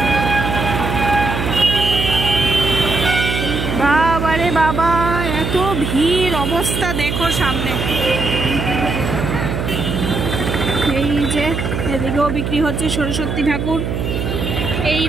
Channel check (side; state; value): right; noise; hum, 3 dB below the sound